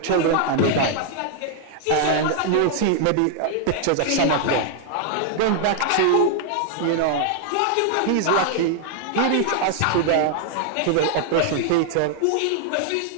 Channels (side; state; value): both; different; correlation 0.00